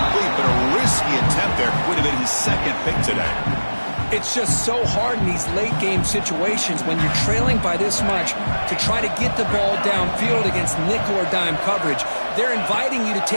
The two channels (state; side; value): inverted; both; correlation -1.00